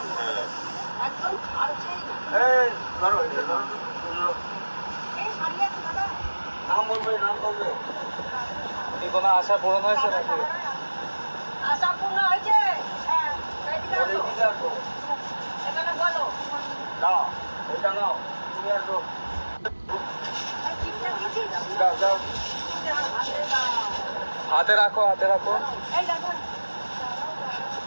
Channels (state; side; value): inverted; both; correlation -1.00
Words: এই ধরো, এটা ধরো। নাম বলবে, নাম বলবে। কি কোনো আশা পূরণ হয়েছে নাকি? আশা পূর্ণ হয়েছে। হ্যাঁ, এদিকে বলে আসো। দিতে আসো। এখানে বলো। নাও, এটা নাও, তুমি আসো। এই চিঠিটা দিয়েছিস? দাও দাও, হাতে দাও। হাতে রাখো, হাতে রাখো। এই দেখো।